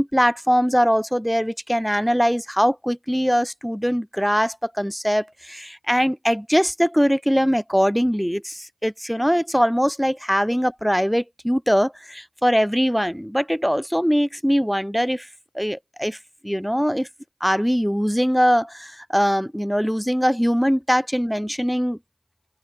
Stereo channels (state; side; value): identical; both; correlation 1.00